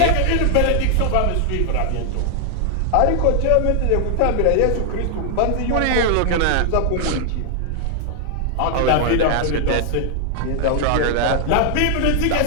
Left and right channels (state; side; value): different; both; correlation 0.00